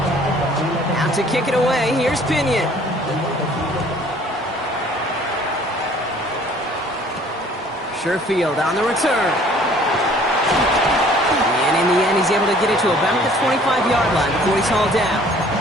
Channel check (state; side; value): normal; both; correlation 0.54